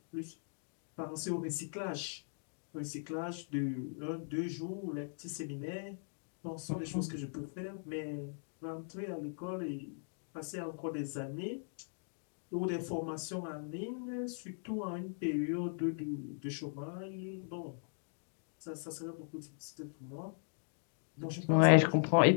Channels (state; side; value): silent; right; digital silence